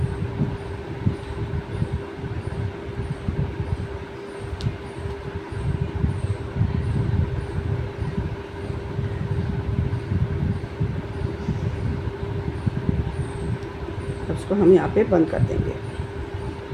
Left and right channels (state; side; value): identical; both; correlation 1.00